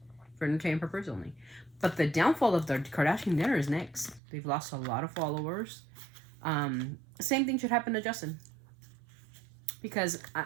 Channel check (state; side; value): drops out; left; at 4.2 s